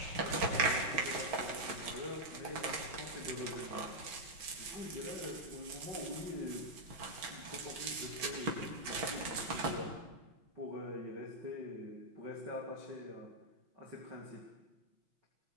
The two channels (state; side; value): late; left; 6.1 ms